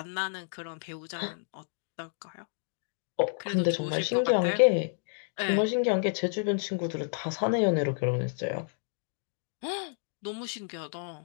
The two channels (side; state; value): right; silent; digital silence